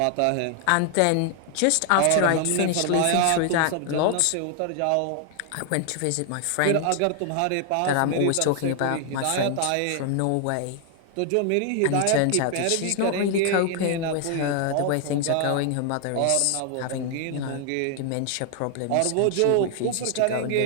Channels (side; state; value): both; different; correlation 0.00